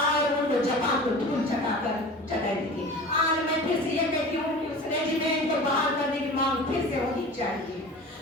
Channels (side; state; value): both; normal; correlation 0.37